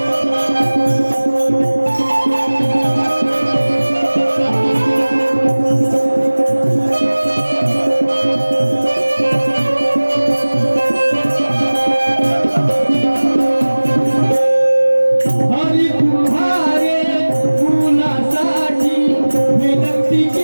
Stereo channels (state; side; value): inverted; both; correlation -1.00